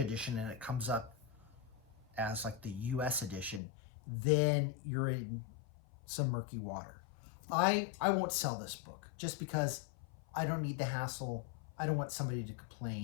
and it comes up as like the US edition, then you're in some murky water. I won't sell this book just because I don't need the hassle. I don't want somebody to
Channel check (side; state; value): right; drops out; at 3.6 s